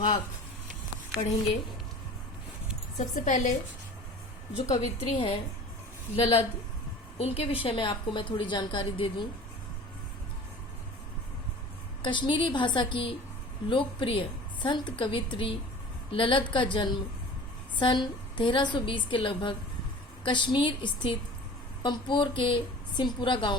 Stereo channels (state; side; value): normal; both; correlation 0.41